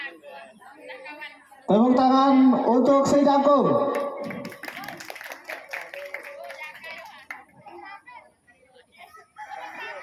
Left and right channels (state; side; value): identical; both; correlation 1.00